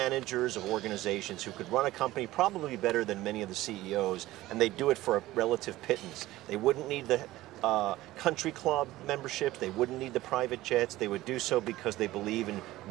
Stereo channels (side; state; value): left; quieter; 16.8 dB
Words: of organizations who could run a company probably better than many of the CEOs, and they do it for a relative pittance. They wouldn't need the country club memberships, they wouldn't need the private jets, they would do so because they believe in